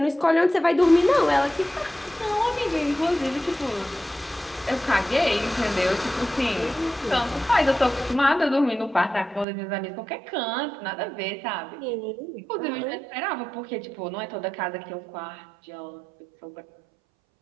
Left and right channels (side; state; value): left; drops out; at 9.5 s